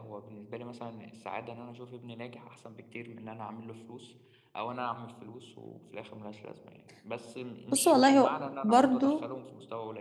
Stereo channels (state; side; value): identical; both; correlation 1.00